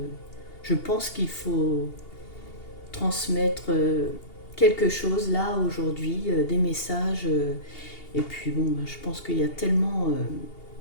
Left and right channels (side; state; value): right; late; 2.8 ms